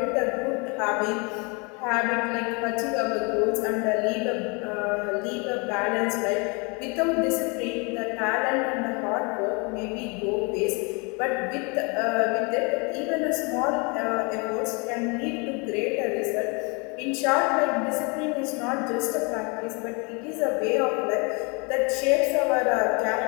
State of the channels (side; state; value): right; quieter; 31.2 dB